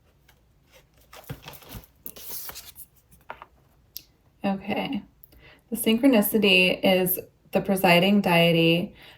Okay, The synchronicity is the presiding deity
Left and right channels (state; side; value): identical; both; correlation 1.00